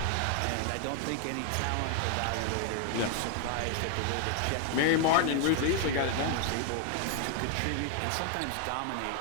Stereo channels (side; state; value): both; different; correlation 0.00